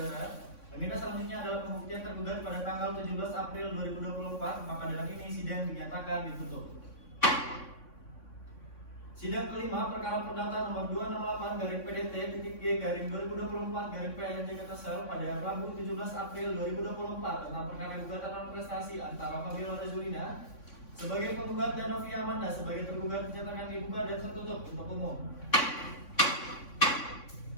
Agenda selanjutnya adalah pembuktian tergugat pada tanggal 17 April 2024, maka dengan ini sidang dinyatakan ditutup. Sidang kelima perkara perdata nomor 268/PDT-G/2024/PN Jakarta Sel pada Rabu 17 April 2024 tentang perkara gugatan non prestasi antara Fabiola Rezulina sebagai penggugat dan Novia Amanda sebagai tergugat dinyatakan dibuka dan tertutup untuk umum.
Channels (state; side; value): late; right; 3.6 ms